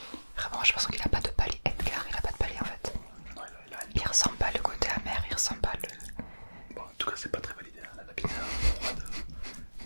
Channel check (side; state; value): both; inverted; correlation -1.00